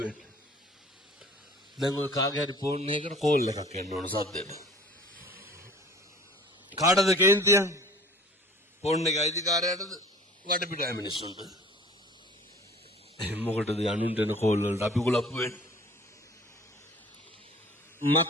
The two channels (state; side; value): normal; both; correlation 0.47